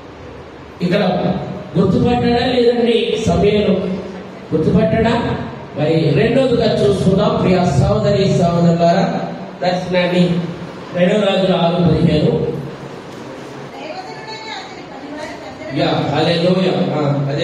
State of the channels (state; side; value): identical; both; correlation 1.00